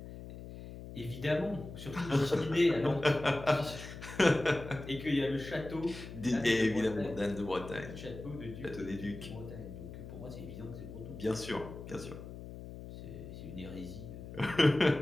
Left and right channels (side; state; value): left; noise; hum, 12 dB below the sound